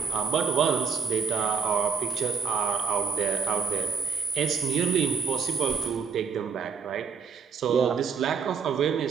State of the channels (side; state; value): left; quieter; 6.2 dB